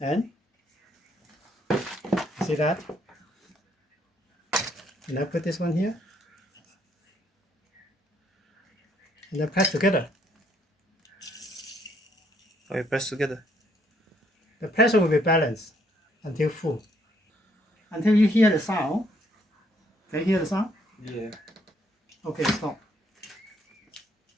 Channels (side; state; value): both; normal; correlation 0.69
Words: see that? And I put this one here. And then press together. Oh, you press together. The pressure will be balanced until full. Until you hear the sound. Can you hear the sound? Yeah. Okay, stop.